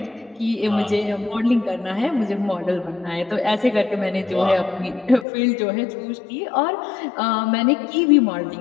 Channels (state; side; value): drops out; right; at 5.2 s